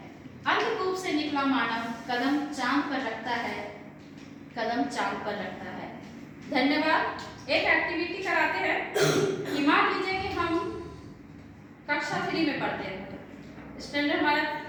अंधकूप से निकला मानव कदम चांद पर रखता है, कदम चांद पर रखता है। धन्यवाद। एक एक्टिविटी कराते हैं कि मान लीजिए कि हम कक्षा 3 में पढ़ते हैं, स्टैंडर्ड हमारा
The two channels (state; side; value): identical; both; correlation 1.00